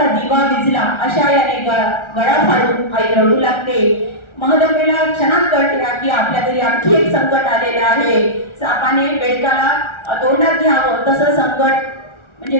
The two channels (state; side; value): late; right; 1.3 ms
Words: दिवा विझला अशा याने गळा फाडून आई रडू लागते. महदप्पेला क्षणात कळते की आपल्या घरी आणखी एक संकट आलेलं आहे. सापाने बेडकाला तोंडात घ्यावं तसं संकट म्हणजे